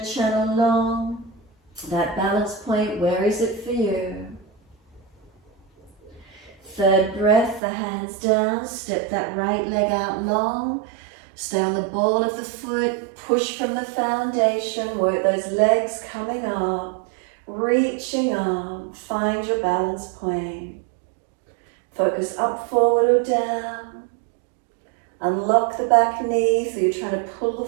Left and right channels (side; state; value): left; drops out; at 7.6 s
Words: Channel long. That balance point, where is it for you? Third breath, the hands down, step that right leg out long. Stay on the ball of the foot, push from the foundation, work those legs coming up, reaching up, find your balance point. Focus up, forward or down. Unlock the back knee, so you're trying to pull the